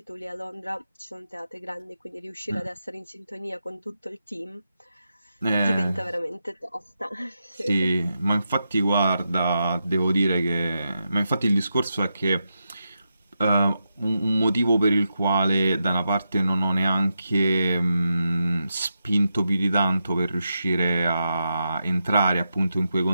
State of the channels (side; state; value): both; inverted; correlation -0.87